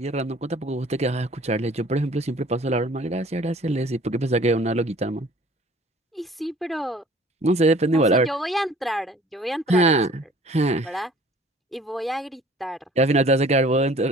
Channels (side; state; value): both; normal; correlation 0.51